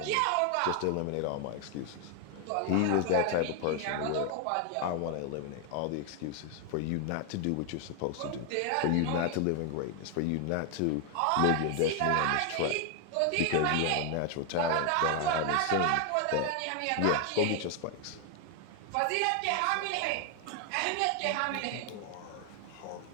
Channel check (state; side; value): different; both; correlation 0.00